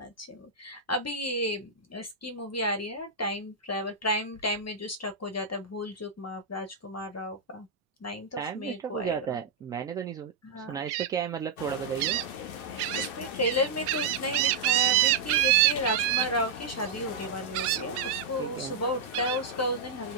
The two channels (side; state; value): left; quieter; 4.4 dB